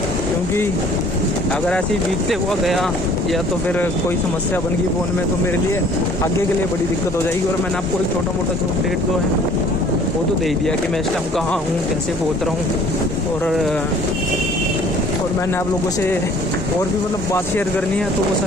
क्योंकि अगर ऐसे ही भीगते हुआ गया या तो फिर कोई समस्या बन गई फ़ोन में, तो मेरे लिए आगे के लिए बड़ी दिक्कत हो जाएगी। और मैंने आपको एक छोटा मोटा जो अपडेट जो है वो तो दे ही दिया कि मैं इस टाइम कहाँ हूँ, कैसे पहुँच रहा हूँ। और मैंने आप लोगों से और भी मतलब बात शेयर करनी है, तो वो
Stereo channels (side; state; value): both; normal; correlation 0.54